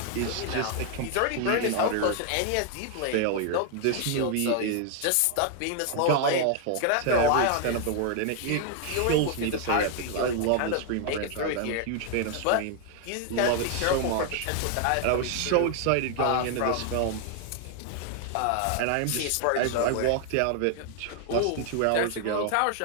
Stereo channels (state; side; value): different; both; correlation 0.00